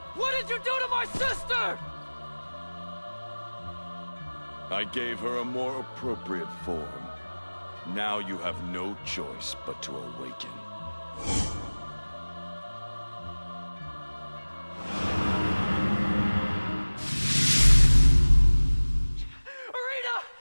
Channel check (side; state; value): both; inverted; correlation -1.00